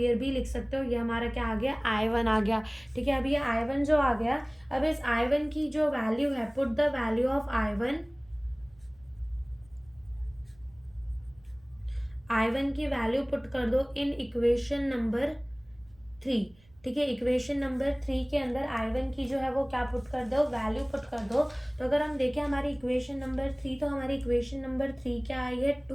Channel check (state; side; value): noise; right; rumble, 29 dB below the sound